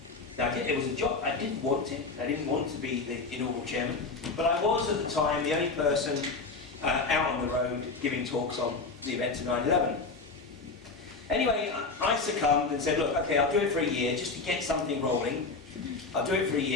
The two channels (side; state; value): right; quieter; 4.0 dB